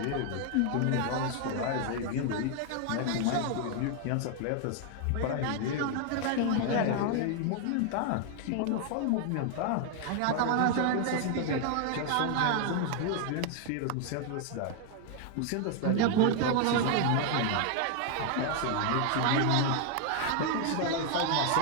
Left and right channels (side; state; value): both; different; correlation 0.00